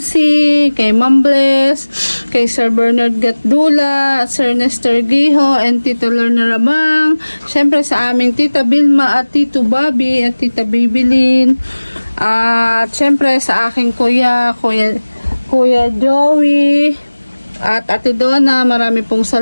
kay Ma'am Bless, kay Sir Bernard Gatdula, Sir Nestor Giho, and Tito Lorna Rabang, syempre sa aming Tita Bilma at Tito Bobby at Tita Bibilin, at syempre sa aking Kuya Joey, at Ate Donna, marami pong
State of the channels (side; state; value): both; inverted; correlation -1.00